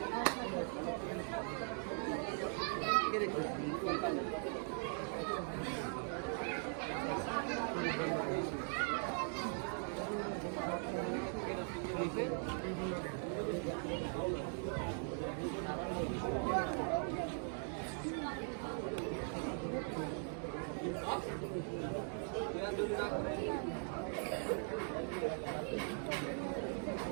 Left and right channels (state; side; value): silent; left; 51 dB below the other